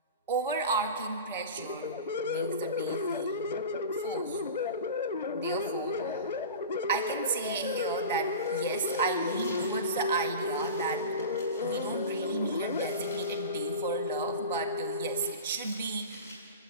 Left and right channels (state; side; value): inverted; both; correlation -0.32